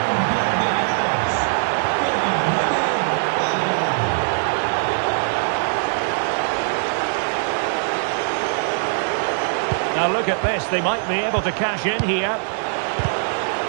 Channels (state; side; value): silent; left; digital silence